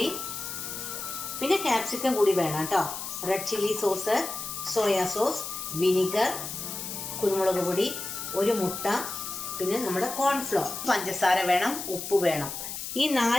പിന്നെ ക്യാപ്സിക്കം കൂടി വേണം കേട്ടോ. Red chilli sauce, soya sauce, vinegar, കുരുമുളക് പൊടി, ഒരു മുട്ട, പിന്നെ നമ്മുടെ കോൺഫ്ലോർ, പഞ്ചസാര വേണം, ഉപ്പ് വേണം. ഈ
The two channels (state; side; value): noise; left; hiss, 7 dB below the sound